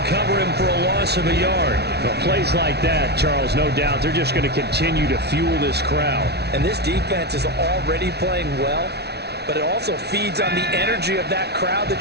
cover him for a loss of a yard. Well, plays like that, Charles, no doubt, they're just going to continue to fuel this crowd. And this defense is already playing well, but it also feeds on the energy of that crowd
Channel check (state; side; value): late; left; 0.49 ms